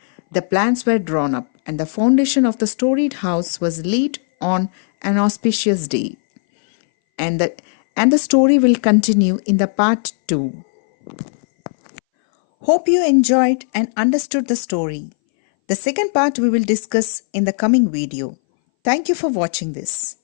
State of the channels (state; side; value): silent; right; 62 dB below the other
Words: The plans were drawn up, and the foundation of the storied house was laid on an auspicious day. And the story will continue in the part 2. Hope you enjoyed and understood the story. The second part we will discuss in the coming video. Thank you for watching this.